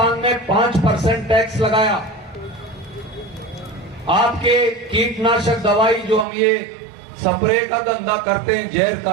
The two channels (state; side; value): drops out; left; at 6.2 s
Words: में 5% टैक्स लगाया। आपके कीटनाशक दवाई जो हम ये स्प्रे का धंधा करते हैं जहर